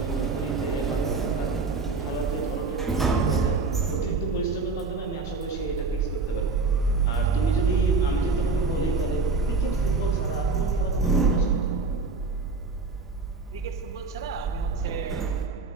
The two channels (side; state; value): left; quieter; 4.1 dB